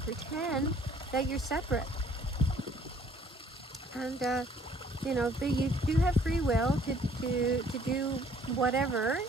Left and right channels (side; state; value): both; normal; correlation 0.59